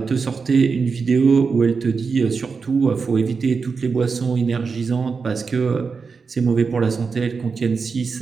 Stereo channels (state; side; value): quieter; left; 5.1 dB